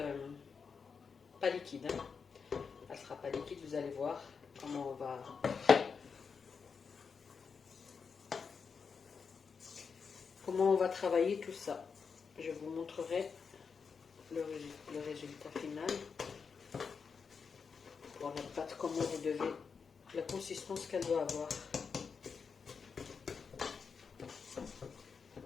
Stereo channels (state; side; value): quieter; right; 5.7 dB